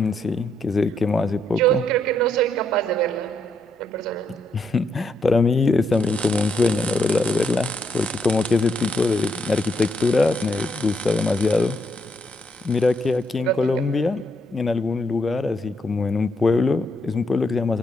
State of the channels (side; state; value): both; normal; correlation 0.77